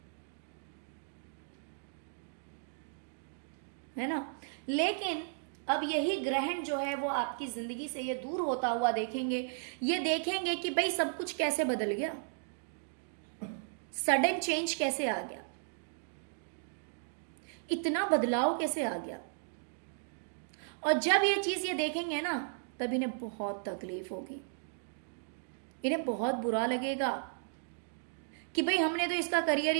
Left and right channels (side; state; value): left; silent; digital silence